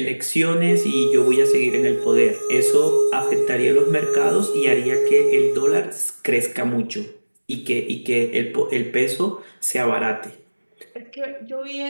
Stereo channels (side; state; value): both; inverted; correlation -1.00